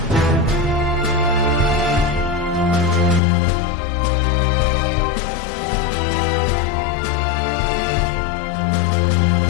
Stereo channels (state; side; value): drops out; right; at 3.2 s